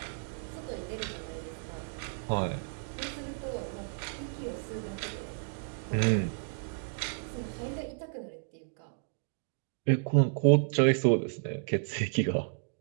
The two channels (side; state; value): left; silent; digital silence